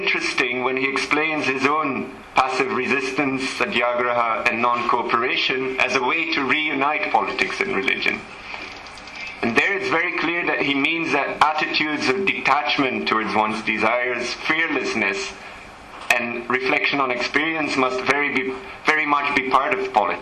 when he explains his own passive resistance, satyagraha, and non-cooperation as a way to reunite politics and religion. And there it's very clear that he means that attitudes of detachment towards one's desires, fearlessness, and reflection on experience must very much be part of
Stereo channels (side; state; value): both; identical; correlation 1.00